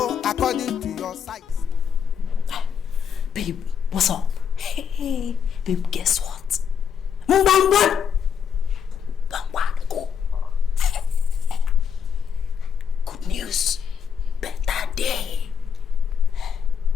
according to your size. Babe, what's up? Hey, babe, guess what? Go. Good news. Better day.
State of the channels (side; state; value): right; quieter; 7.4 dB